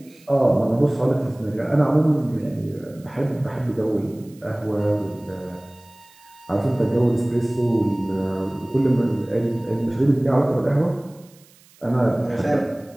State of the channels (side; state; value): right; noise; hiss, 28 dB below the sound